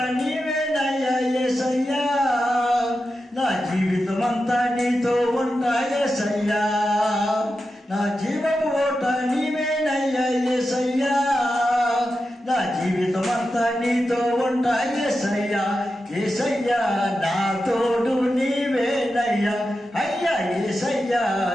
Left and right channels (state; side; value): normal; both; correlation 0.90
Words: నీవేనయ్యా యేసయ్యా, నా జీవితమంతా నీతో ఉంటా యేసయ్యా, నా జీవపు ఓట నీవేనయ్యా యేసయ్యా, నా జీవితమంతా నీతో ఉంటా యేసయ్యా, యేసయ్యా నా తోడు నీవేనయ్యా, అయ్యా యేసయ్యా